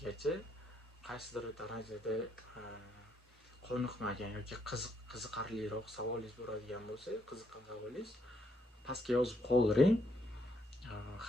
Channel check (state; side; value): normal; both; correlation 0.74